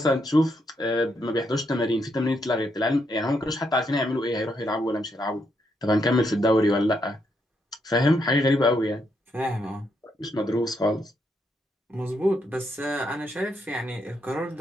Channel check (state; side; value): normal; both; correlation 0.78